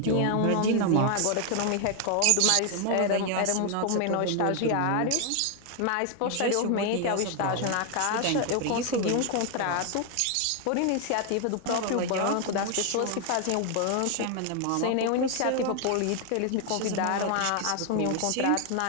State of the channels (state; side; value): different; both; correlation 0.00